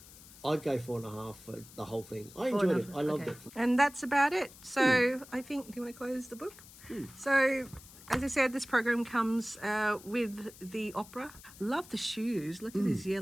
I'd go 4.5 for the whole thing. I enjoyed it. I loved it. And that's about it. So I think, do you want to close the book? So... As I said, this program comes with the opera. Love the shoes. Look at these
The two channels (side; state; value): left; noise; hiss, 20 dB below the sound